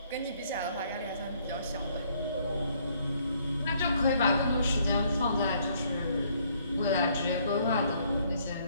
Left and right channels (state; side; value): inverted; both; correlation -0.66